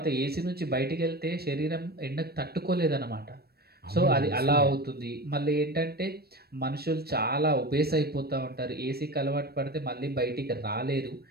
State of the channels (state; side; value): late; left; 0.46 ms